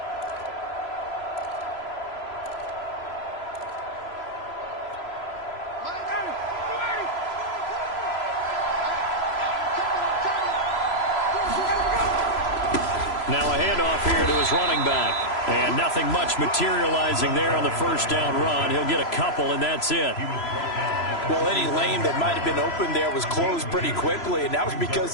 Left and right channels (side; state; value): right; late; 3.0 ms